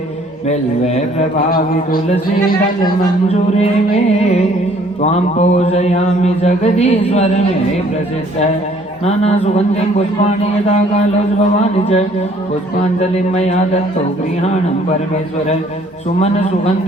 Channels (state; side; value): normal; both; correlation 0.60